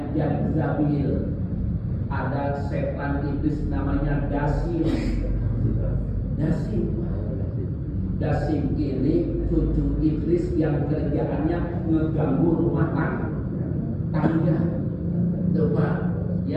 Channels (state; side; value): identical; both; correlation 1.00